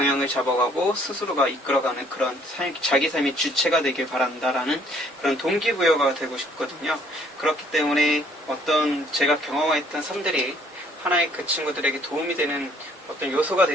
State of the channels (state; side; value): normal; both; correlation 0.62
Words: 잡아가고 스스로가 이끌어가는 그런 자기 삶의 주체가 되길 바란다라는 그런 동기부여가 되고 싶거든요. 그렇기 때문에 제가 경험했던 삶들이 하나의 그 친구들에게 도움이 되는 어떤 요소가